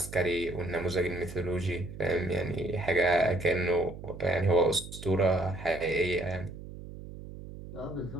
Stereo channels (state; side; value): noise; right; hum, 13 dB below the sound